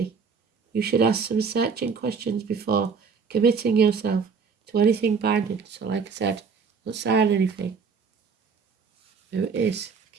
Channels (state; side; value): quieter; left; 5.6 dB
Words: You should ask some searching questions before committing yourself to anything binding. So like I said, don't sign anything. There it is.